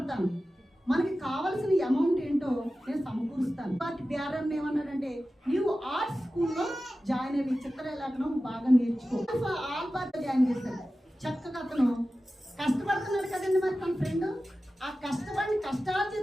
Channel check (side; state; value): both; normal; correlation 0.94